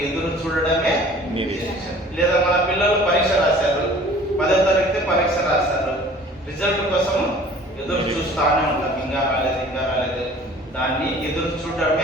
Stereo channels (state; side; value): normal; both; correlation 0.49